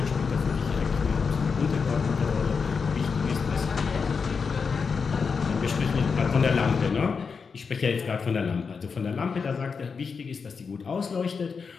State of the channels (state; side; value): quieter; right; 5.4 dB